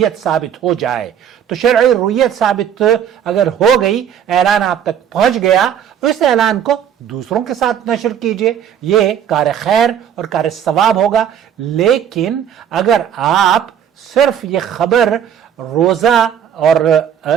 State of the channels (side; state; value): left; quieter; 9.1 dB